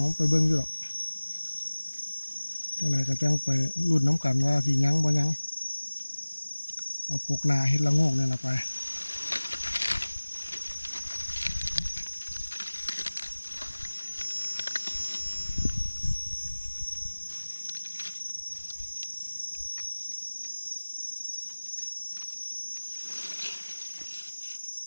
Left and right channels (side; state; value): both; inverted; correlation -1.00